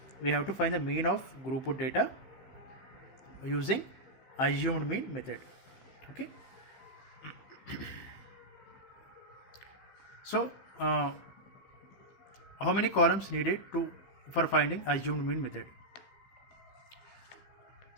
We have to find the mean of group of data using assumed mean method. Okay, so how many columns needed for finding assumed mean method?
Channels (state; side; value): late; right; 15 ms